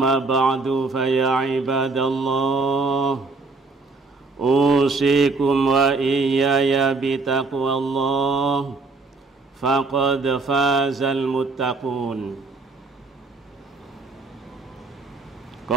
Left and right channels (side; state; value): left; quieter; 3.8 dB